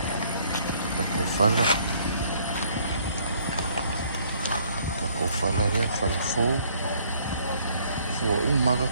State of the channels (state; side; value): inverted; both; correlation -0.62